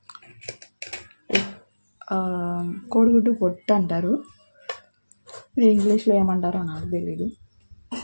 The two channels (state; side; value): inverted; both; correlation -1.00